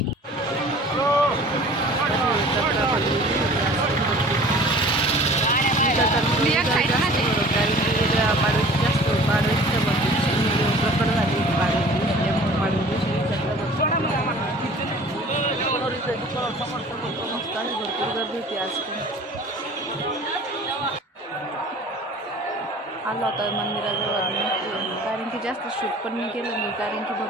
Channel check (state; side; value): normal; both; correlation 0.46